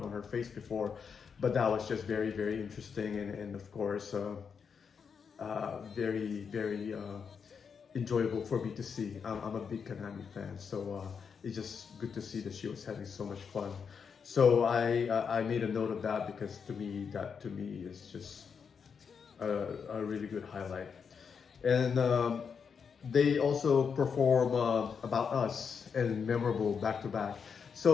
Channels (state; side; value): quieter; right; 6.3 dB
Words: her face before, but that was just very, very interesting, and of course very, very enjoyable for me to see. I'm a big Kanami fan, so it's just good to see that she was having so much fun. So I made a note of that, because to me is just a really good highlight. And they also perform About Us and Memorable back to back.